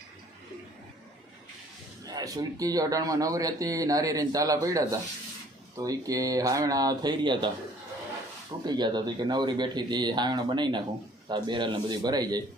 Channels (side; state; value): both; normal; correlation 0.56